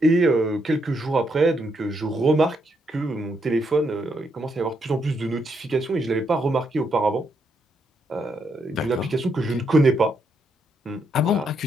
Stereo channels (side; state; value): both; normal; correlation 0.77